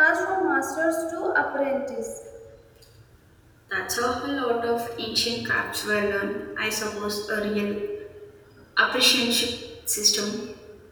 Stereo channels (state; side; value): identical; both; correlation 1.00